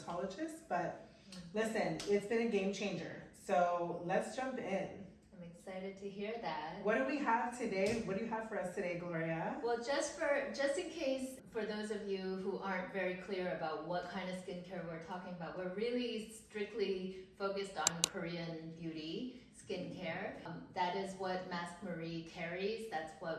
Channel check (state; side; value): identical; both; correlation 1.00